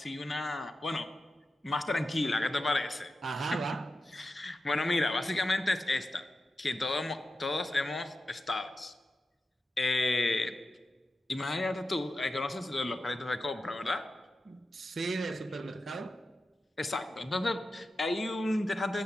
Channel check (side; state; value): both; normal; correlation 0.91